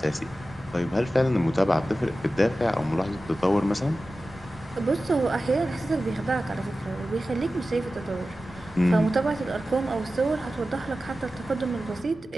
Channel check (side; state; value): both; normal; correlation 0.94